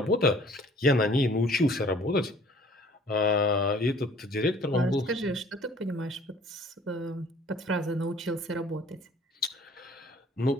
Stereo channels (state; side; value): normal; both; correlation 0.54